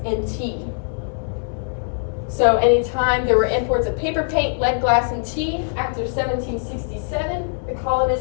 and tea. So anytime there were imports of paper, paint, lead, glass, and tea, after 1767, the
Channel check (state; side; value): silent; right; 64 dB below the other